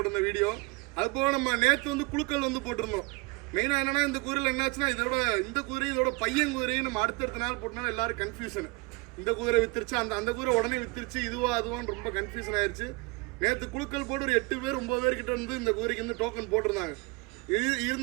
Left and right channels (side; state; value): left; quieter; 26.0 dB